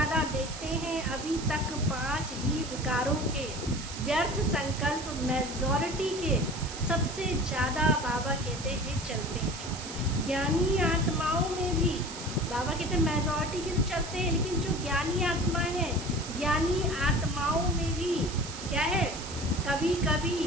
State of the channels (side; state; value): right; noise; hiss, 11 dB below the sound